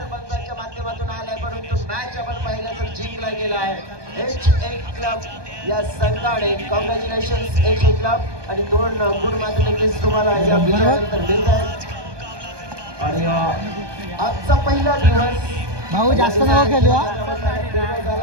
पंचाच्या माध्यमातून आलाय परंतु मॅच आपण पाहिलं तर जिंकला गेला आहे. HA क्लब या संघाने कॉंग्रॅच्युलेशन HA क्लब आणि 2 गुण मात्र नक्कीच तुम्हाला या विजयानंतर मिळत आहेत. आणि आजचा पहिला दिवस भाऊ जास्त नाव खेळू.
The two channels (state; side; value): late; left; 1.2 ms